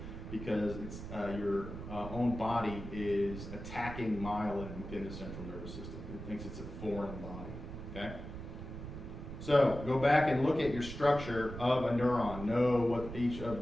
because it's your own body is attacking myelin within the central nervous system. It thinks it's a foreign body, okay? So go back and look at your structure of a neuron. Know what each of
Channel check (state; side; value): noise; right; rumble, 9 dB below the sound